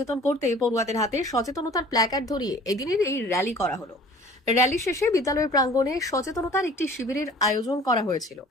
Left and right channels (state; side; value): normal; both; correlation 0.48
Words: করতে পড়ুয়াদের হাতে সচেতনতার প্ল্যাকার্ড ধরিয়ে এদিনের এই র্যালি করা হলো। র্যালি শেষে বিদ্যালয়ের প্রাঙ্গণে সচেতনতার একটি শিবিরের আয়োজন করা হয়েছিল।